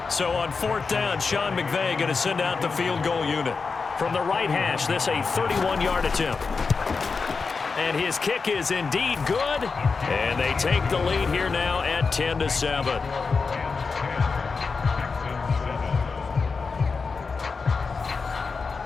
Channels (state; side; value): quieter; right; 4.7 dB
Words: So on 4th down, Sean McVay going to send out the field goal unit. From the right hash, this a 31-yard attempt. And his kick is indeed good. And they take the lead here now at 10-7.